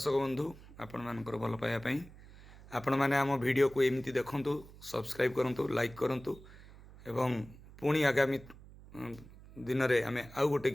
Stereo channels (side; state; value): right; noise; hum, 19 dB below the sound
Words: बंधु आपण मानकर भल पाइबा पई आपण माने आम वीडियो को एमती देखंतु सब्सक्राइब करंतु लाइक करंतु एवं पुणी आगामी दिन रे आमे आउ गोटे